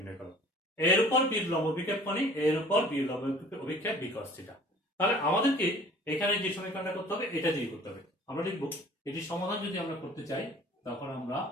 করো। এর উপর বি এর লম্ব অভিক্ষেপ মানে এর উপর বি এর লম্ব অভিক্ষেপ বি cos থিটা। তাহলে আমাদেরকে এখানে যে সমীকরণটা করতে হবে এটা দিয়ে করতে হবে। আমরা লিখব এটি সমাধান যদি আমরা করতে চাই তখন আমরা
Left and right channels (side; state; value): both; normal; correlation 0.50